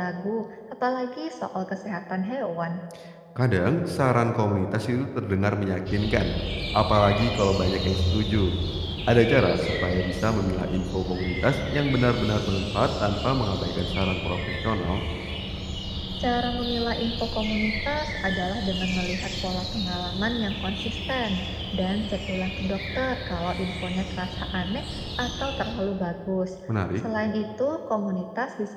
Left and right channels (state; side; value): identical; both; correlation 1.00